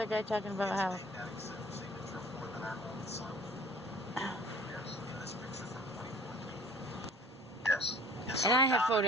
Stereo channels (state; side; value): normal; both; correlation 0.50